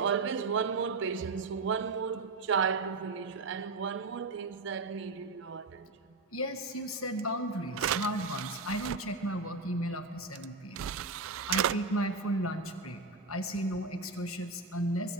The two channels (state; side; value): quieter; left; 3.7 dB